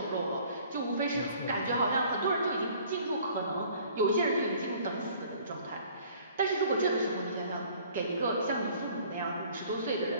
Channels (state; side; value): inverted; both; correlation -0.54